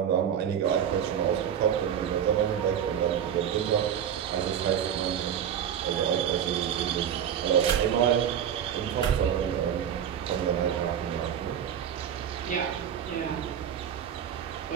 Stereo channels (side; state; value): left; quieter; 9.1 dB